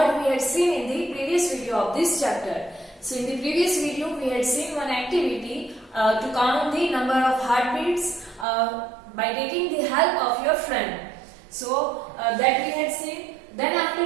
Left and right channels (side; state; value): left; drops out; at 8.5 s